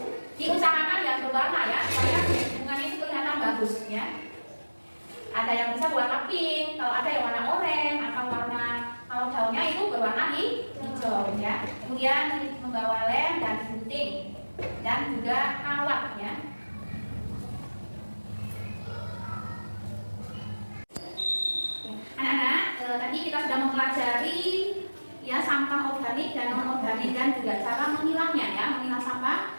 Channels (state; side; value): inverted; both; correlation -1.00